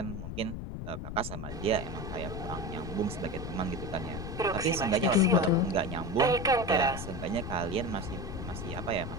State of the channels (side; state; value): left; noise; rumble, 7 dB below the sound